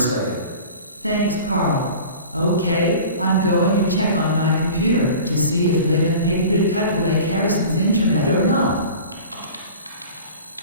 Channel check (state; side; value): inverted; both; correlation -0.39